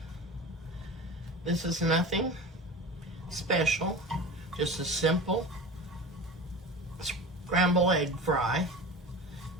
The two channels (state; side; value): normal; both; correlation 0.33